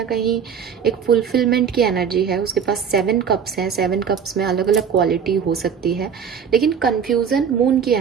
कहीं एक फुलफिलमेंट की एनर्जी है, उसके पास 7 कप्स हैं, 7 कप्स में अलग अलग क्वालिटी हो सकती है। लेकिन कंफ्यूजन मून की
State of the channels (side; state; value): left; quieter; 7.3 dB